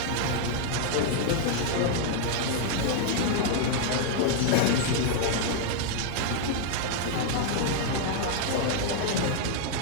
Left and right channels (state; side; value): different; both; correlation 0.00